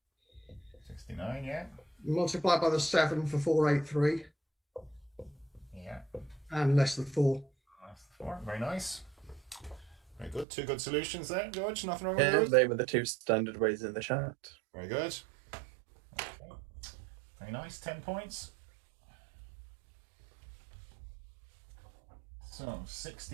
69, yeah. Multiplied by the 7 for 483. Yeah. And less than 4. That's 4. Very nice. Very good. 2 good solutions there, George. Nothing wrong with Yeah, those? they were the 2 standard ways in the chat. Very good. Okay. Very nice. 10 points. So,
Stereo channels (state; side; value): drops out; left; at 10.5 s